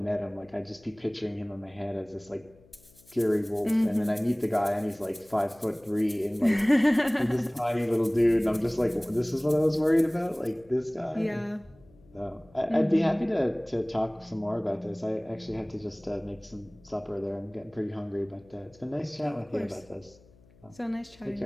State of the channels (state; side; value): noise; left; hum, 28 dB below the sound